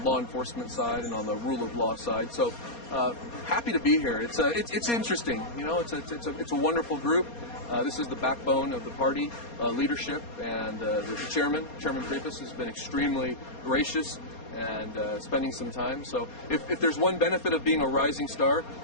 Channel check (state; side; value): late; right; 4.2 ms